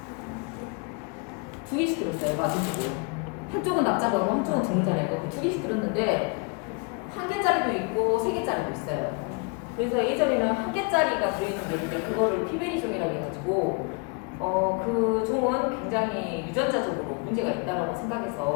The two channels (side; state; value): right; quieter; 32.0 dB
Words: 2개씩 들었어요. 맞으시고 한쪽은 납작하고 한쪽은 드물잖아요. 2개씩 들었는데 1개짜리도 있고 3개짜리도 있어요. 그래서 예전에는 1개짜리가 들어있는 게 있는데 그거를 피베리종이라고 해가지고 그 종은 굉장히 유전자적으로 문제가 있다라고